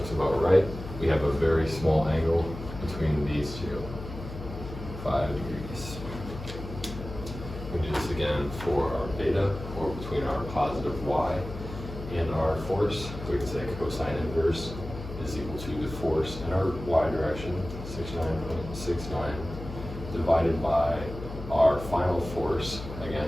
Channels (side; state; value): left; noise; hum, 10 dB below the sound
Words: about right. We have a very small angle between these two, 5 degrees. We do this again for our beta, or between our positive Y and our force. We can say cosine inverse is equal to the force in our Y direction, 69.69, divided by our final force,